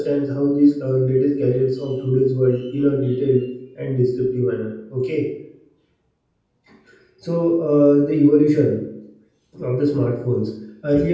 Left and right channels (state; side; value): identical; both; correlation 1.00